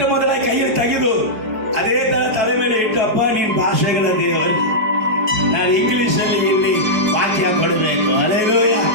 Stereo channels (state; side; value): late; left; 4.6 ms